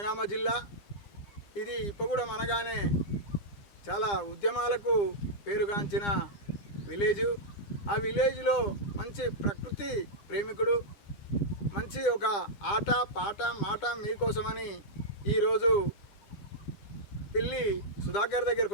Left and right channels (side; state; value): right; late; 9.9 ms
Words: జిల్లా. ఇది ఇప్పగూడెం అనగానే చాలా ఉద్యమాలకు పేరుగాంచిన విలేజు. ఆ విలేజ్లో మంచి ప్రకృతి ప్రేమికుడు, మంచి ఒక ఆట పాట మాట మీకోసమని ఈరోజు పిల్లి సుధాకర్